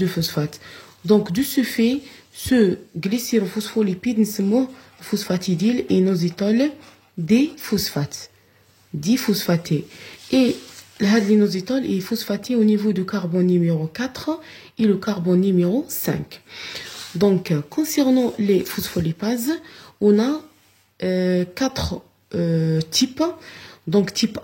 phosphates. Donc de ce fait, ce glycérophospholipide, nous phosphatidyl inositol diphosphaté. Et l'inositol est phosphaté au niveau du carbone numéro 4 et le carbone numéro 5. Donc, concernant les phospholipases, on a 4 types. Donc, type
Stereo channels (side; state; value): both; identical; correlation 1.00